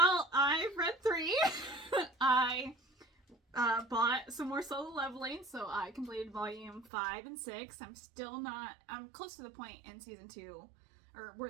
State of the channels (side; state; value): left; drops out; at 6.9 s